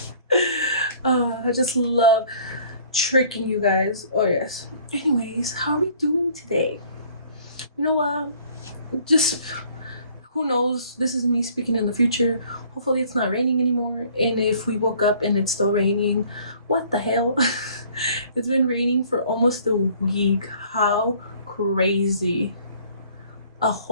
I just love tricking you guys. Oh, yes. Anyways, how are we doing today? You know what? Just who knows? This is me speaking in the future. Hopefully, it's not raining anymore. And if we woke up and it's still raining, what the hell? It's been raining for almost a week. How crazy. A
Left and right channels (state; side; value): inverted; both; correlation -0.56